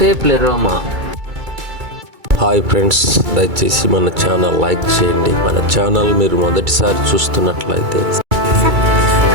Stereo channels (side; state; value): left; late; 2.3 ms